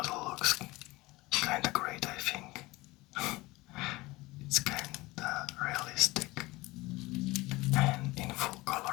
looks kinda great I think. It's kinda realistic, and in full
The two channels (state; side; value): quieter; right; 21.0 dB